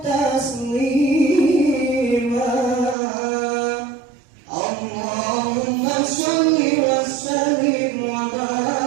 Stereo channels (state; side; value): drops out; left; at 3.0 s